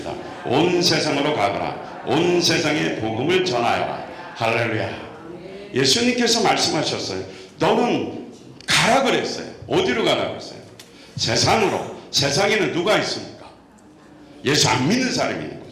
온 세상으로 가거라. 온 세상에 복음을 전하여라. 할렐루야. 예수님께서 말씀하셨어요. 너는 가라 그랬어요. 어디로 가라 그랬어요? 세상으로. 세상에는 누가 있습니까? 예수 안 믿는 사람이 있는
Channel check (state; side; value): identical; both; correlation 1.00